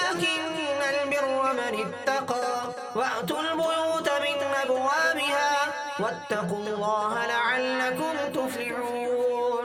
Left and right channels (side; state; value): both; identical; correlation 1.00